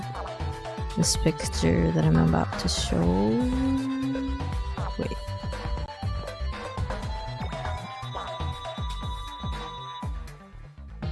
this picture that I'm about to show. Wait.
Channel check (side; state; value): both; identical; correlation 1.00